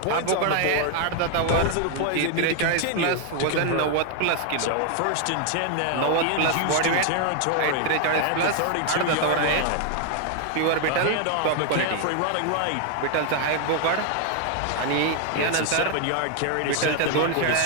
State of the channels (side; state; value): both; different; correlation 0.00